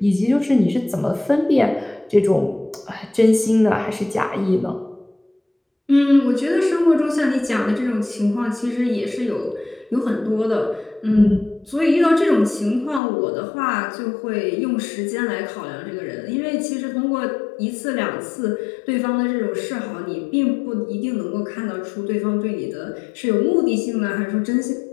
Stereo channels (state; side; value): drops out; right; at 13.0 s